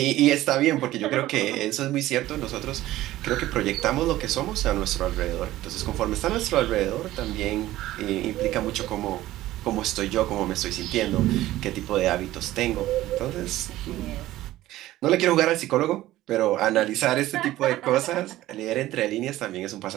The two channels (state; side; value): quieter; left; 15.5 dB